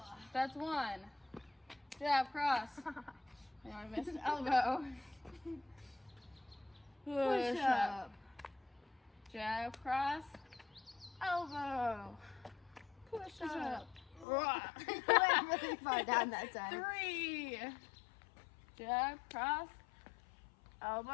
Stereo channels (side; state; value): right; drops out; at 14.2 s